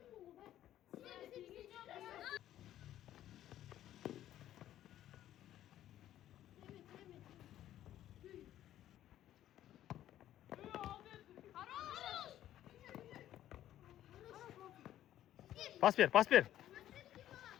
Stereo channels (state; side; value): quieter; right; 12.4 dB